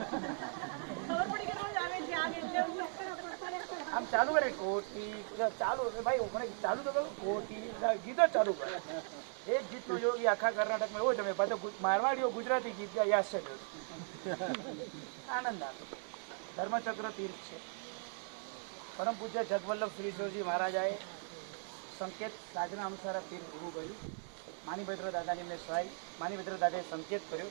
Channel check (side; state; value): left; silent; 52 dB below the other